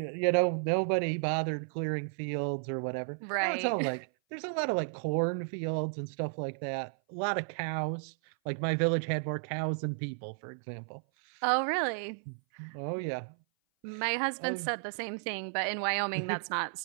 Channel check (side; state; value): left; silent; 56 dB below the other